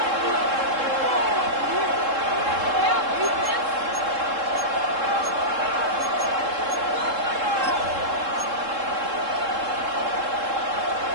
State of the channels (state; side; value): late; left; 3.7 ms